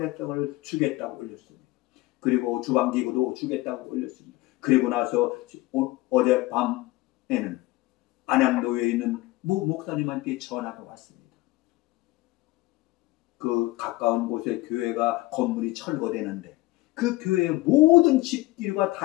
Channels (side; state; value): right; quieter; 19.4 dB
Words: 주겠다고 올렸습니다. 그리고 주방기구도 주겠다고 올렸습니다. 그리고 나서 어젯밤에는 안양교회에 있는 모 목사님한테 전화가 왔습니다. 그 가까운 곳에 교회가 건물이 철거되는데 그 교회의 모든 집기류가